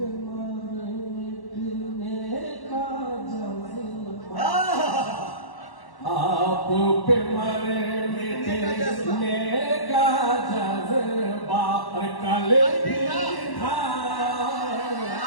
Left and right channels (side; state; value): right; late; 1.1 ms